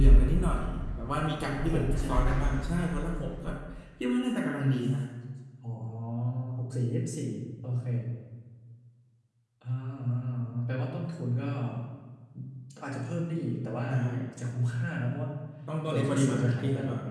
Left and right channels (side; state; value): both; identical; correlation 1.00